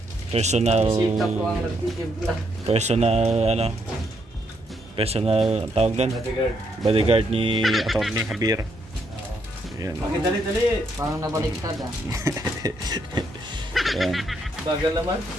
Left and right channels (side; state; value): both; normal; correlation 0.75